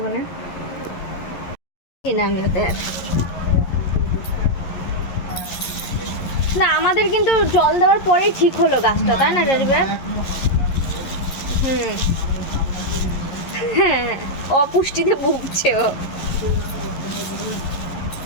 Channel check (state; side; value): late; right; 11 ms